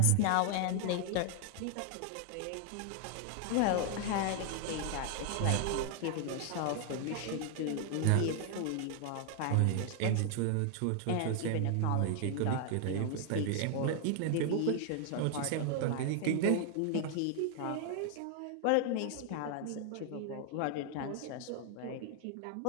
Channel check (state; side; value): different; both; correlation 0.00